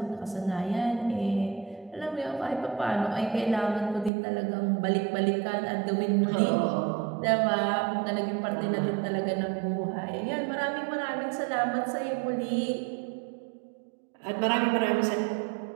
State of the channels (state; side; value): drops out; left; at 4.1 s